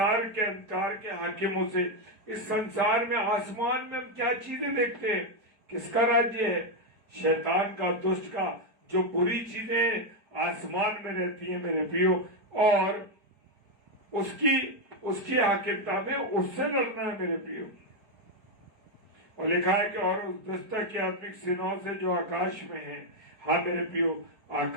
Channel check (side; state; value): left; late; 4.7 ms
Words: के अंधकार के हाकिमों से। इस संसार में, आसमान में हम क्या चीजें देखते हैं? किसका राज्य है? शैतान का, दुष्ट का। जो बुरी चीजें आसमान में रहती हैं मेरे प्रियो, और उसकी हाकिमता में उससे लड़ना है मेरे प्रियो। और लिखा है कि और उस दुष्ट की आत्मिक सेनाओं से जो आकाश में है। हाँ मेरे प्रियो,